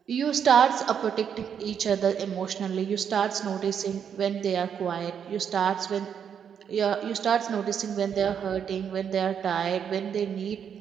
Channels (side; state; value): left; quieter; 7.9 dB